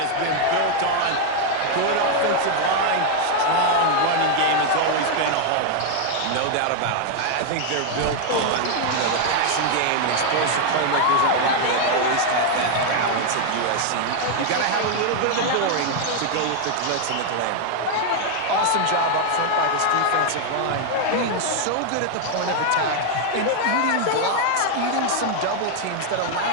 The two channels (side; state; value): both; different; correlation 0.01